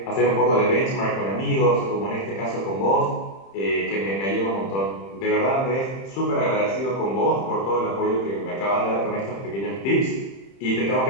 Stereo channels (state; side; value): late; right; 30 ms